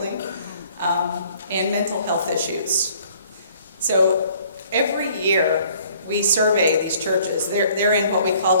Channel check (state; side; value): inverted; both; correlation -0.58